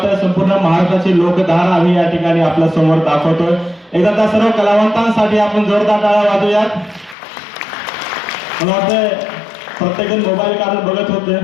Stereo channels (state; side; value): drops out; right; at 7.2 s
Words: संपूर्ण महाराष्ट्राची लोकधारा आम्ही या ठिकाणी आपल्या समोर दाखवतोय. एकदा त्या सर्व कलावंतांसाठी आपण जोरदार टाळ्या वाजवूयात. मला वाटतंय प्रत्येकजण मोबाईल काढून बघत होते.